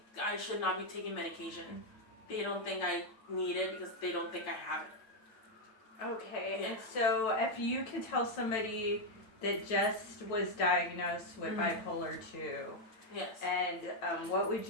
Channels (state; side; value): late; right; 9.1 ms